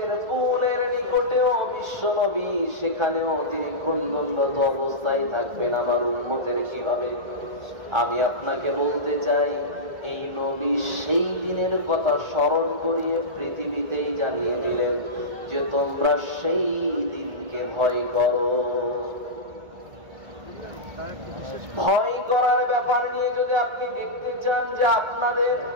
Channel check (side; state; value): left; late; 1.8 ms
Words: পুলের নিকটেও বিশ্বনবী সেখানেও তিনি ক্রন্দনরত অবস্থায় থাকবেন, আমার উম্মতের কি হবে। আমি আপনাকে বলতে চাই এই নবী সেই দিনের কথা স্মরণ করিয়ে পৃথিবীতেই জানিয়ে দিলেন যে তোমরা সেই দিনকে ভয় করো। ভয় করার ব্যাপার নিয়ে যদি আপনি দেখতে চান যে আপনাদের